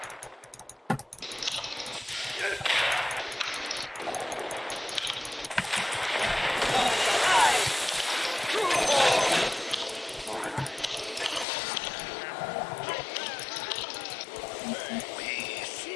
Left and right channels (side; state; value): right; drops out; at 11.5 s